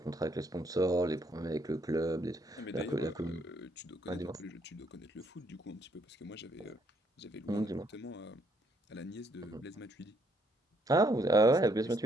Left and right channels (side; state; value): both; normal; correlation 0.70